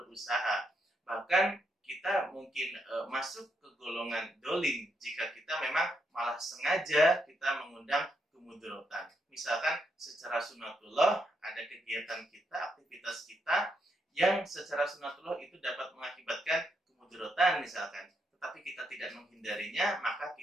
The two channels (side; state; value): both; normal; correlation 0.79